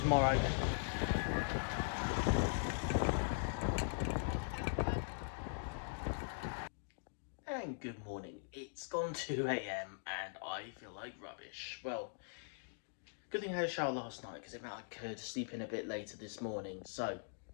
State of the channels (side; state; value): right; silent; digital silence